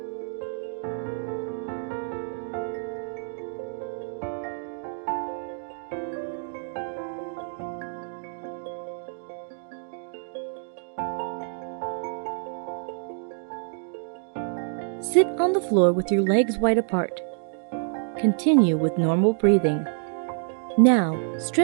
Sit on the floor with your legs wide apart. Continue with normal breathing. Now,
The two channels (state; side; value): silent; left; digital silence